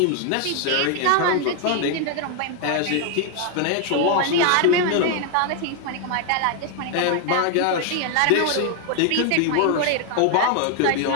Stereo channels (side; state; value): both; different; correlation 0.00